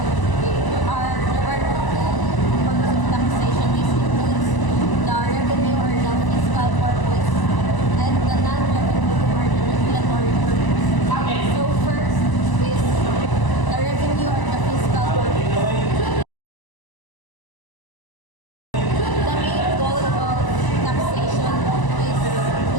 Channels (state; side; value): late; right; 1.0 ms